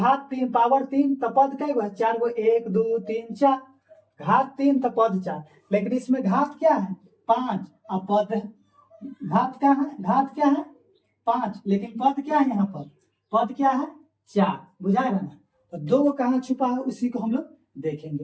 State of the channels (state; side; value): identical; both; correlation 1.00